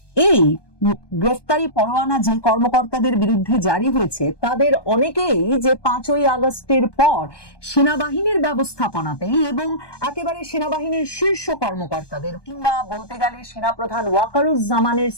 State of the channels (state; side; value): late; right; 1.2 ms